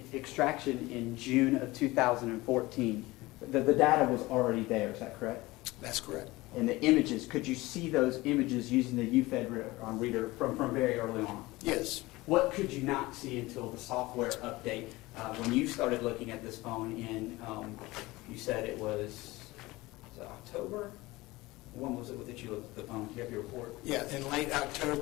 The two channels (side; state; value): right; quieter; 20.3 dB